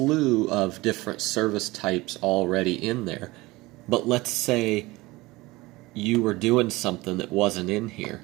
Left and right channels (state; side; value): quieter; left; 20.9 dB